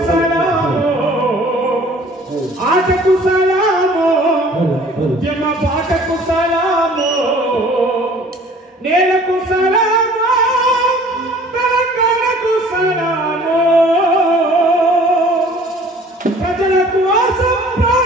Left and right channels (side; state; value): both; normal; correlation 0.51